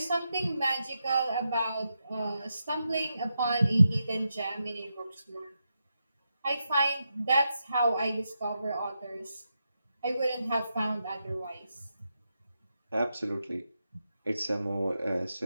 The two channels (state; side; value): inverted; both; correlation -0.86